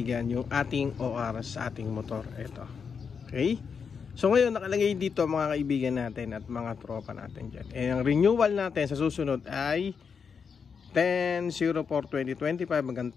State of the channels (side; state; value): right; quieter; 6.1 dB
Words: yung ating OR sa ating motor. Ito. Okay? So ngayon nakalagay dito mga kaibigan natin at mga tropa natin dyan. Ang renewal natin sa susunod ay 10/04/2025 hanggang